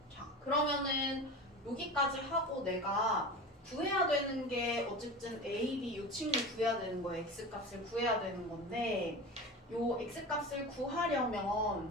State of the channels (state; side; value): normal; both; correlation 0.30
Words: 자 그러면은 여기까지 하고 내가 구해야 되는 게 어쨌든 A, B 이 친구 구해야 되는 거예요. X값을 구해야 되는 건데 요 X값을 구하려면